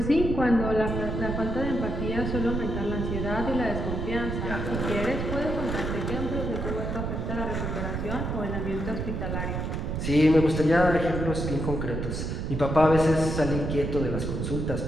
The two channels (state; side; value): noise; right; rumble, 3 dB below the sound